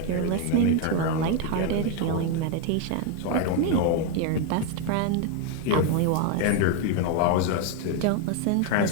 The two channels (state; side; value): different; both; correlation 0.01